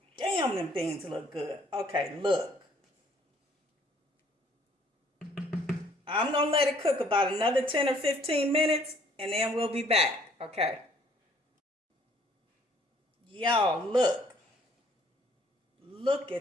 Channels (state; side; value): normal; both; correlation 0.61